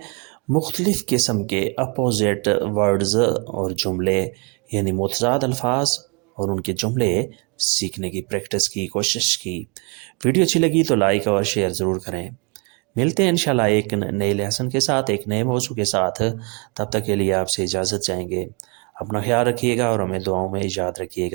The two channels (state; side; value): quieter; left; 33.5 dB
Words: مختلف قسم کے اپوزٹ ورڈز اور جملے یعنی متضاد الفاظ اور ان کے جملے سیکھنے کی پریکٹس کی کوشش کی۔ ویڈیو اچھی لگی تو لائک اور شیئر ضرور کریں۔ ملتے ہیں انشاءاللہ ایک نئے لیسن کے ساتھ، ایک نئے موضوع کے ساتھ۔ تب تک کے لیے آپ سے اجازت چاہیں گے۔ اپنا خیال رکھیے گا اور ہمیں دعاؤں میں یاد رکھیے